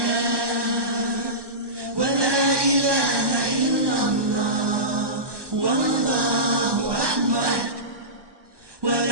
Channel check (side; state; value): left; late; 1.2 ms